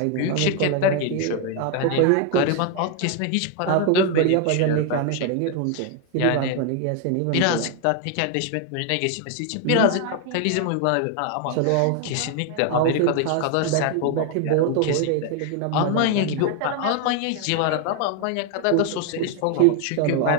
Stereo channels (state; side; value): different; both; correlation 0.01